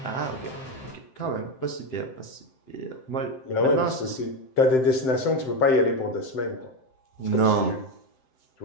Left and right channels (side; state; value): right; late; 7.7 ms